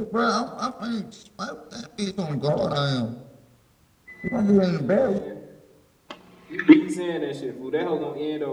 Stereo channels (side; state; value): both; identical; correlation 1.00